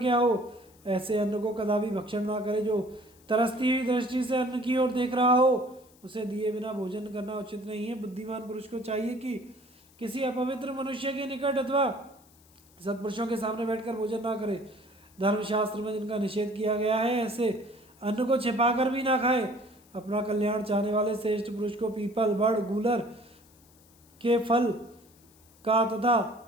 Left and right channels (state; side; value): noise; left; hiss, 28 dB below the sound